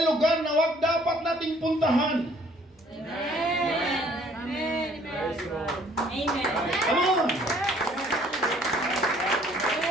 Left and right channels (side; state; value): both; normal; correlation 0.59